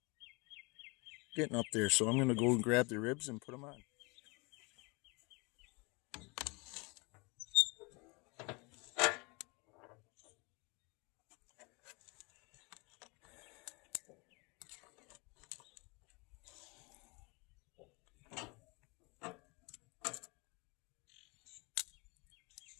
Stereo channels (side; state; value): right; quieter; 28.5 dB